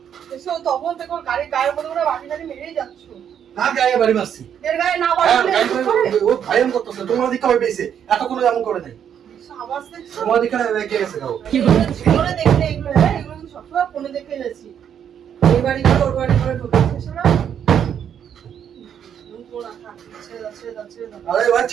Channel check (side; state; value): left; quieter; 8.8 dB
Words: এসো তখন দেখো গাড়ির গায়ের মধ্যে করে বাটি টাটি মেরেই যাচ্ছ। কার গায়ে বাড়ি মারছি? এর গায়ে না হ্যাঁ, বাড়ি গায়ে মেরে বাড়ি, ও ভাইরাল করতেছে, তোমার দিকে হবে পেয়েছে, এতক্ষণ এমন করে নাই। আওয়াজ দেখছো? তোমার দিকে রেগে গেছে গাও। জীবনে দেখলে এগুলো, হ্যাঁ, এগুলো কিন্তু সবসময় ফোনে দেখে গেছি। এই বাড়ি করে ওর বাড়ি করে ঢুকেছে না? ছেড়ে দাও, ছেড়ে দাও, ছেড়ে দাও। আরে ভাই